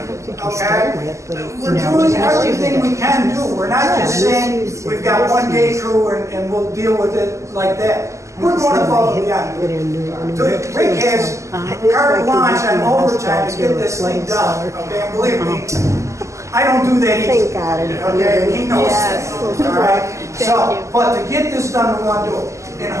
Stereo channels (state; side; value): late; left; 0.15 ms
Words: okay? We're doing everything we can do. We're not just saying we've got one day crew and we'll deal with it like that. We're going above and beyond. So Rick has carte blanche on overtime to get this thing done, okay? And believe me, I don't do that either. Okay, he knows that, all right? So, but to get this done, we want to do it. And